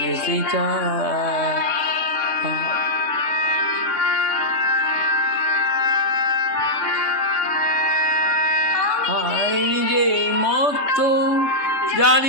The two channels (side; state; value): right; late; 3.3 ms